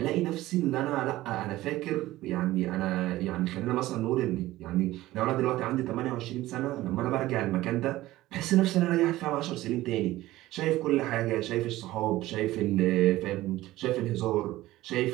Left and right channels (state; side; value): quieter; left; 16.6 dB